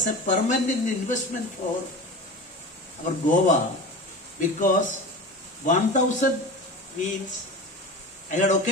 a permanent investment for our Goa, because 1,000 means, I had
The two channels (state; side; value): normal; both; correlation 0.31